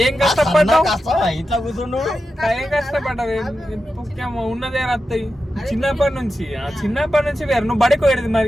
ఏం కష్టపడ్డావు? ఇట్లా కూర్చుండు. ఏం కష్టపడ్డావు? ఉన్నదే రత్తాయి చిన్నప్పటి నుంచి వేరు. నువ్వు బడికి పోయేది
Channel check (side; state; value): both; normal; correlation 0.90